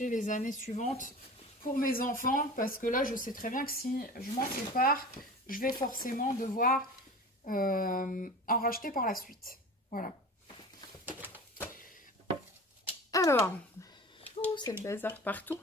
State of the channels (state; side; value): normal; both; correlation 0.36